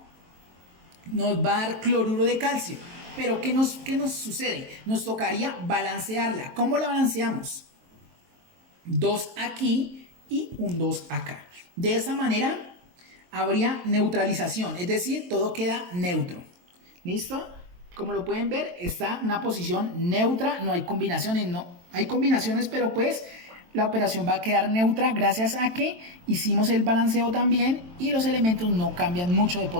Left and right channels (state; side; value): late; left; 23 ms